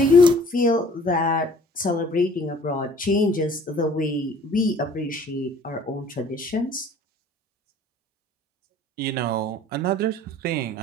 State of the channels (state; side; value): normal; both; correlation 0.53